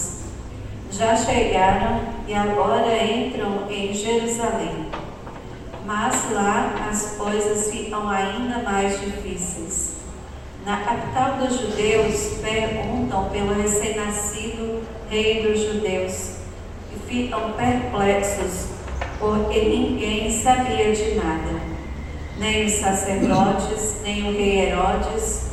Já chegaram e agora entram em Jerusalém. Mas lá as coisas ficam ainda mais difíceis. Na capital dos judeus, perguntam pelo recém-nascido rei dos judeus e ficam perplexos, porque ninguém sabia de nada, nem os sacerdotes, nem o rei Herodes,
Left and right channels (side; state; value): both; identical; correlation 1.00